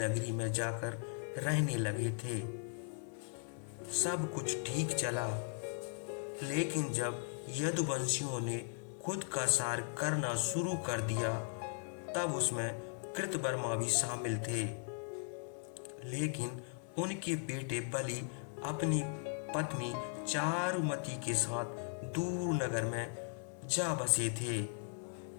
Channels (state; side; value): silent; right; 52 dB below the other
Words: में जाकर रहने लगे थे। सब कुछ ठीक चला, लेकिन जब यदुवंशियों ने खुद का सार करना शुरू कर दिया तब उसमें कृतवर्मा भी शामिल थे, लेकिन उनके बेटे बलि अपनी पत्नी चारुमती के साथ दूर नगर में जा बसे थे।